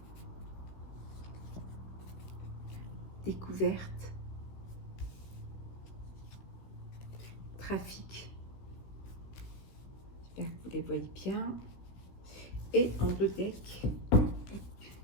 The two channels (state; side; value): late; right; 16 ms